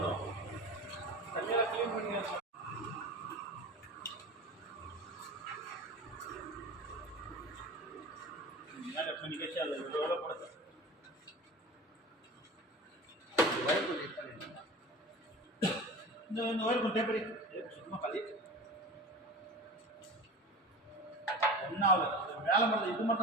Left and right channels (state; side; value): normal; both; correlation 0.33